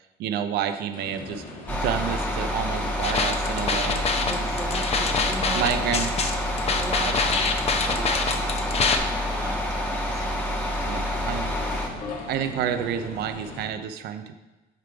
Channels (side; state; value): both; normal; correlation 0.35